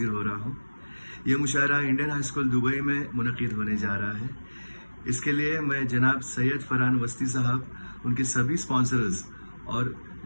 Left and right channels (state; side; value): inverted; both; correlation -1.00